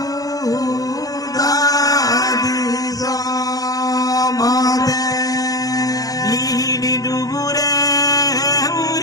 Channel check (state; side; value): late; right; 0.17 ms